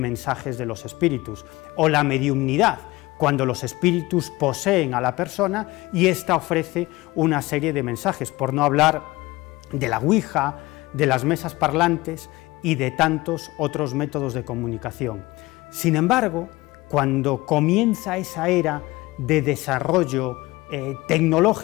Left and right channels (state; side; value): quieter; right; 20.4 dB